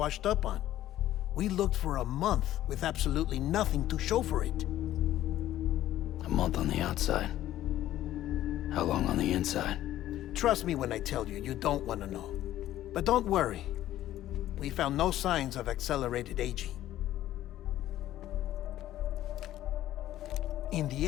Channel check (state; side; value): quieter; right; 13.4 dB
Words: up on. We looked for a month with absolutely nothing to show for it. A month on the outside. How long on the inside? Trust me when I tell you, you don't want to know. But don't worry. We found no signs of accelerated aging. In the